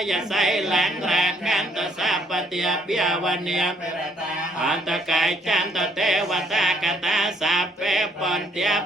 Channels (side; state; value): both; normal; correlation 0.67